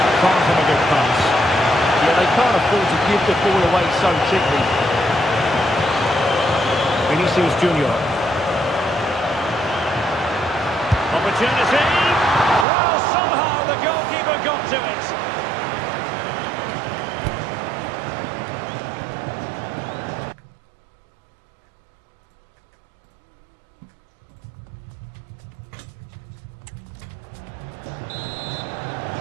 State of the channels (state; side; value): drops out; left; at 12.7 s